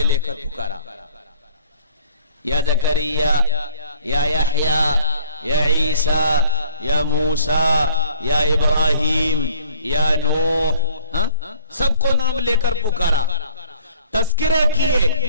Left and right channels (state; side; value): inverted; both; correlation -0.54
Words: لے کر پکارا، یا زکریا، یا یحییٰ، یا عیسیٰ، یا موسیٰ، یا ابراہیم، یا نوح، سب کو نام لے کر پکارا، تذکرے کیے،